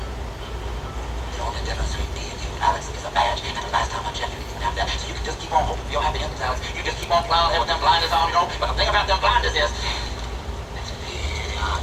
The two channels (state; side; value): identical; both; correlation 1.00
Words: The only difference between me and you, Alex, is a badge. And the last time I checked, you didn't even have that. So you can just keep on hoping for your happy endings, Alex. You just keep on plowing ahead with them blinders on, you know? But the thing about them blinders is, it's really hard